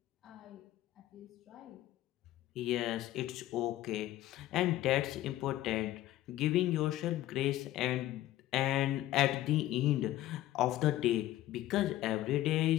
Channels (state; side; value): quieter; right; 14.8 dB